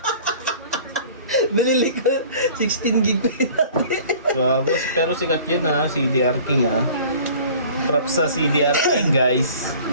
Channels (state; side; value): inverted; both; correlation -0.48